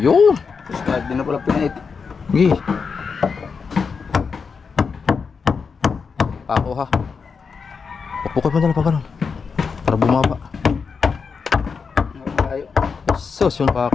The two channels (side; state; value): right; quieter; 5.5 dB